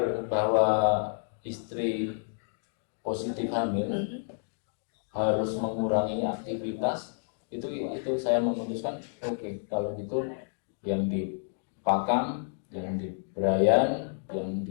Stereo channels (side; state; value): right; silent; digital silence